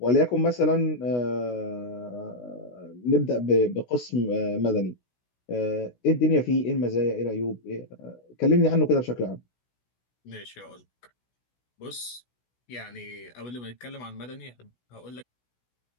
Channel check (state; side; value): late; right; 16 ms